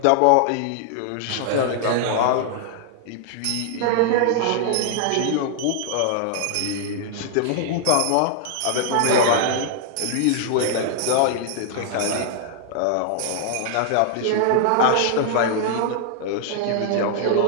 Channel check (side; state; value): both; different; correlation -0.01